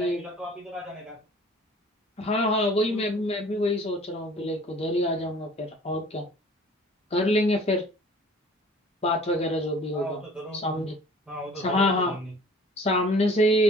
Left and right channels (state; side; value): normal; both; correlation 0.49